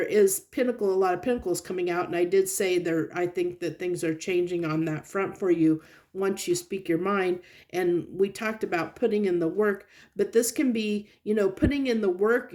is a lot of Pentacles coming out, and I did say there, I think that things are changing on that front for you once you speak your mind. And we talked about putting in the work, but this can be, you know, putting in the work,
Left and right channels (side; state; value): both; identical; correlation 1.00